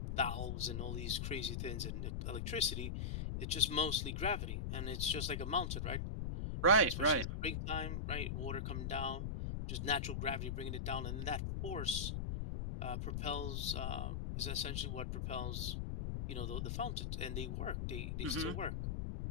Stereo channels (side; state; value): left; noise; rumble, 2 dB below the sound